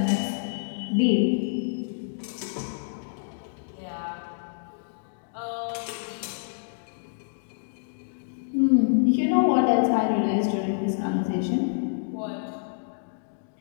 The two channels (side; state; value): right; silent; digital silence